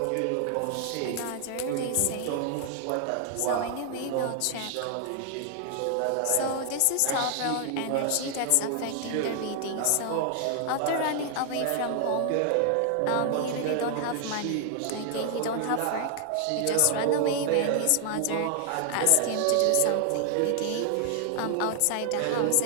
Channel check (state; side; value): different; both; correlation 0.00